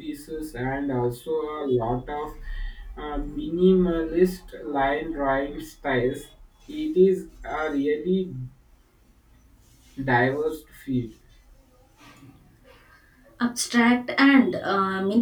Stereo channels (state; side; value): identical; both; correlation 1.00